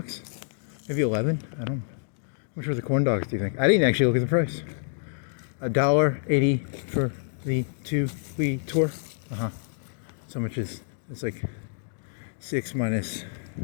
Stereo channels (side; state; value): right; silent; digital silence